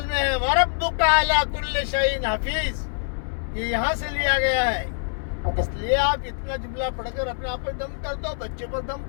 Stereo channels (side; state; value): right; silent; 62 dB below the other